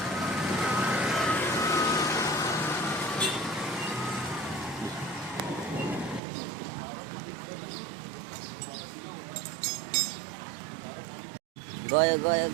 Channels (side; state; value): left; drops out; at 6.2 s